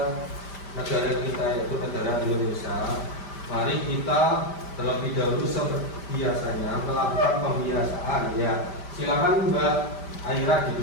negara kita yaitu negara Indonesia, mari kita terlebih dahulu seperti biasanya melakukan pembiasaan ya. Silakan Mbak Aira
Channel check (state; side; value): late; right; 5.1 ms